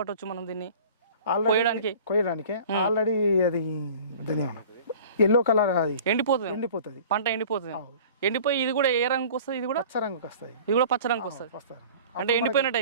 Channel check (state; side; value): inverted; both; correlation -0.45